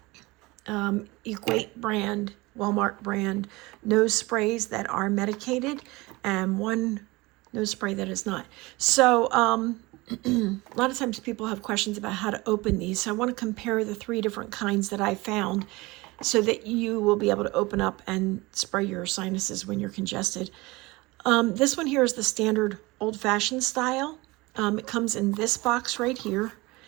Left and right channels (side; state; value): left; quieter; 22.5 dB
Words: Equate brand, Walmart brand nose sprays that are medicated, and 1 nose spray that is not. So a lot of times people have questions about how to open these, so I want to compare the 3 different kinds that I found so that you will be able to open up and spray your sinuses when you're congested. This one here is the standard old-fashioned style. It comes in this box right here,